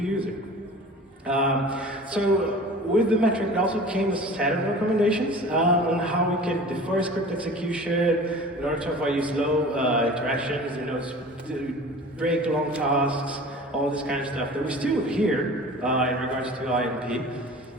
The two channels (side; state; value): both; normal; correlation 0.41